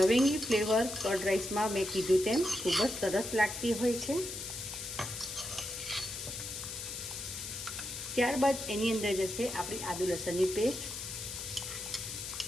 ફ્લેવર કર્ડ રાઈસમાં મેં કીધું તેમ ખૂબ જ સરસ લાગતી હોય છે. ત્યારબાદ એની અંદર જશે આપણી આદુ લસણની પેસ્ટ,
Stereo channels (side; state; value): left; noise; hiss, 7 dB below the sound